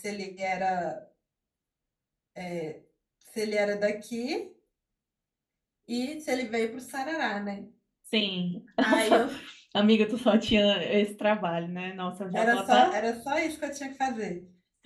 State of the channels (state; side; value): identical; both; correlation 1.00